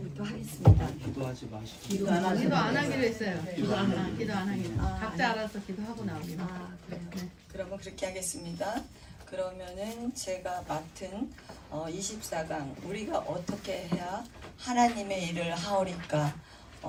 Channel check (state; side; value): identical; both; correlation 1.00